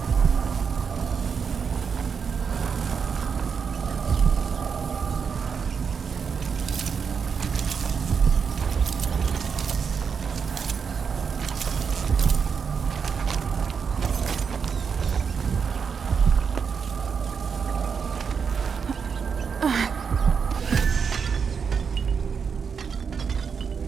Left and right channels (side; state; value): left; quieter; 6.2 dB